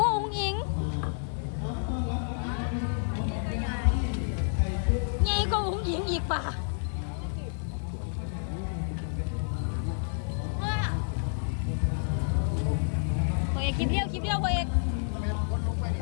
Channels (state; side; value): silent; right; 58 dB below the other